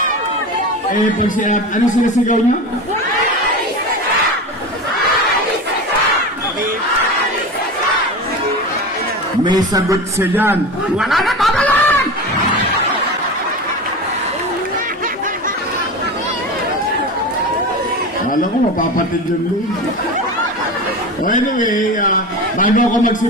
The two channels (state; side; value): normal; both; correlation 0.28